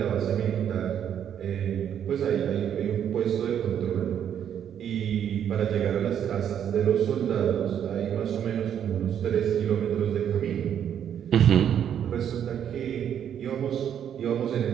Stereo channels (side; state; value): left; quieter; 9.2 dB